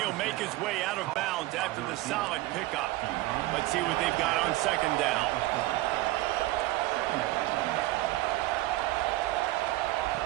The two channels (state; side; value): quieter; left; 17.9 dB